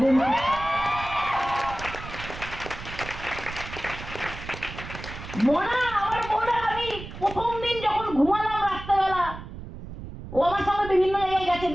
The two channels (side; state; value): right; noise; rumble, 11 dB below the sound